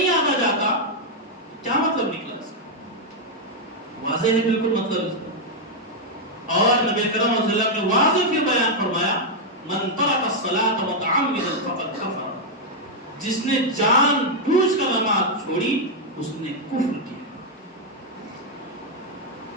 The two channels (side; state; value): both; normal; correlation -0.01